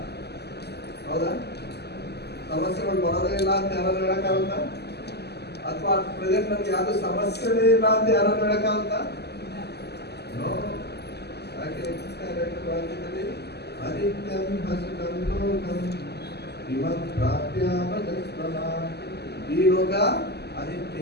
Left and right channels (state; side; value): late; right; 0.48 ms